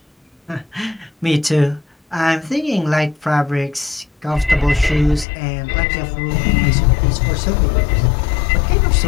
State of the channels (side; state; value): right; drops out; at 5.2 s